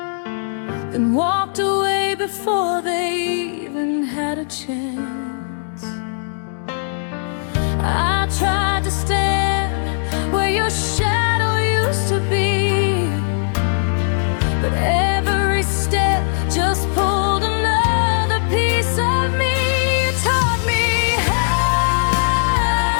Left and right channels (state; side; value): silent; right; digital silence